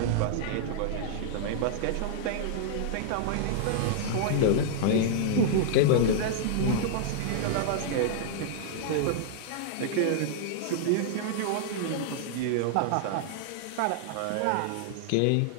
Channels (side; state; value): both; different; correlation -0.01